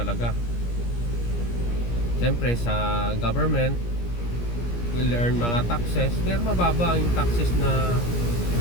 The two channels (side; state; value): right; late; 17 ms